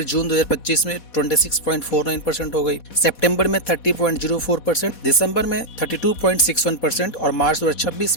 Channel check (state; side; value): late; right; 4.1 ms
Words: जून 2025 में 26.49% हो गई, सितंबर में 30.04%, दिसंबर में 32.61% और मार्च 2026